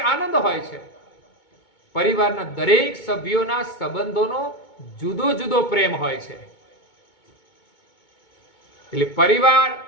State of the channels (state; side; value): late; right; 2.2 ms